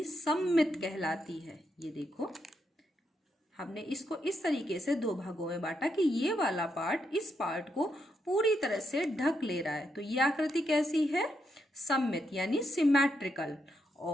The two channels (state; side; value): normal; both; correlation 0.80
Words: सममित कहलाती है। ये देखो, हमने इसको इस तरीके से दो भागों में बांटा कि ये वाला पार्ट इस पार्ट को पूरी तरह से ढक ले रहा है। तो ये आकृति कैसी है? सममित, यानी सिमेट्रिकल।